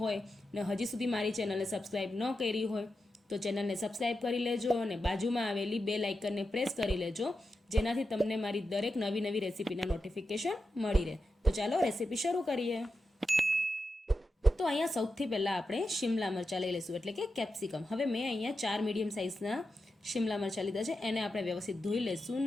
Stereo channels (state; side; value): normal; both; correlation 0.89